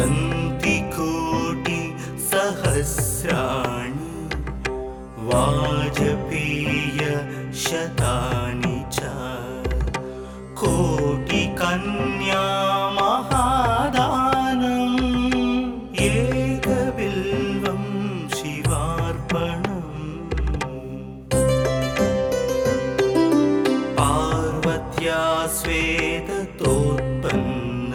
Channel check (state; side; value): identical; both; correlation 1.00